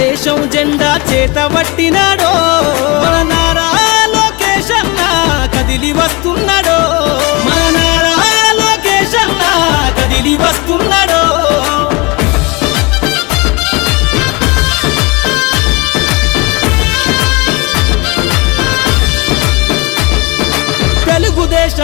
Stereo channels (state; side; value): quieter; right; 26.3 dB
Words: జెండా చేతబట్టినాడో మన నారా లోకేష్ అన్న కదిలి వస్తున్నాడో మన నారా లోకేష్ అన్న కదిలి వస్తున్నాడో